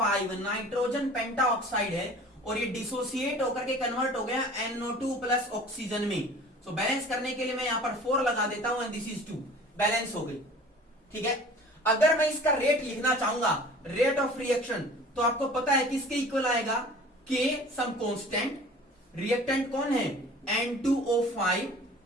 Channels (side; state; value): both; normal; correlation 0.45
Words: nitrogen pentoxide है, और ये डिसोसिएट होकर के कन्वर्ट हो गया NO2 प्लस ऑक्सीजन में। सो बैलेंस करने के लिए मैं यहां पर 4 लगा देता हूं, एंड दिस इज 2, बैलेंस हो गई। ठीक है, अगर मैं इसका रेट लिखना चाहूंगा, रेट ऑफ रिएक्शन, तो आपको पता है किसके इक्वल आएगा, K सम कांस्टेंट, रिएक्टेंट कौन है, N2O5,